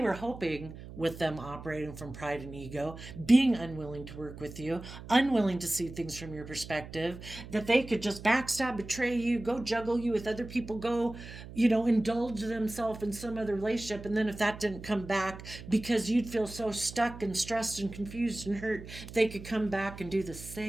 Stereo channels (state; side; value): noise; right; hum, 14 dB below the sound